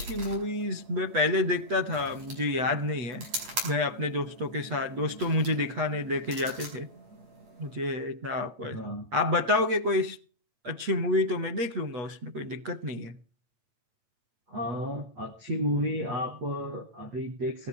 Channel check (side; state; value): left; late; 8.7 ms